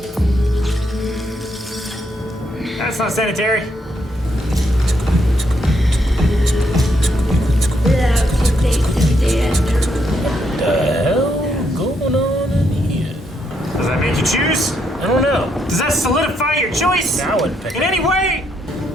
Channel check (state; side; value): normal; both; correlation 0.76